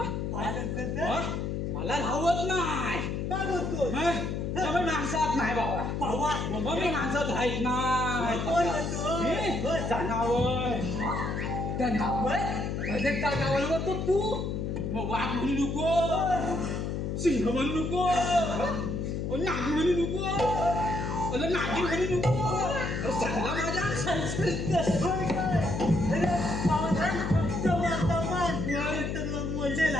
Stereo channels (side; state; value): left; noise; hum, 2 dB below the sound